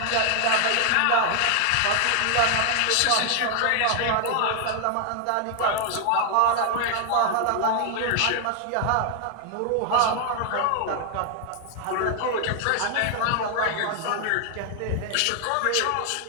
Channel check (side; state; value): both; different; correlation 0.00